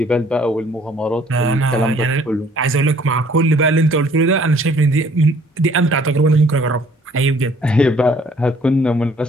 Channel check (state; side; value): normal; both; correlation 0.59